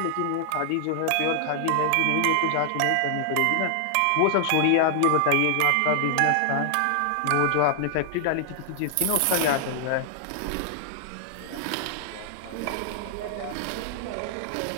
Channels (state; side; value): different; both; correlation 0.00